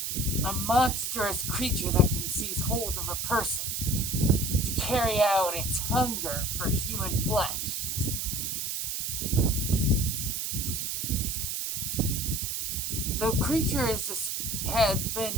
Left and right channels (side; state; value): right; noise; hiss, 2 dB below the sound